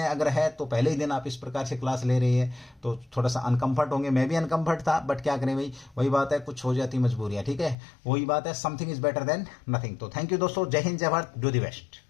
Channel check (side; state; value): right; drops out; at 7.8 s